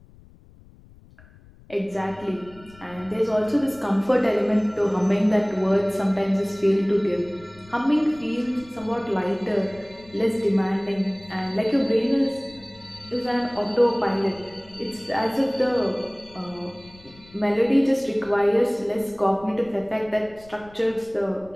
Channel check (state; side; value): noise; left; rumble, 24 dB below the sound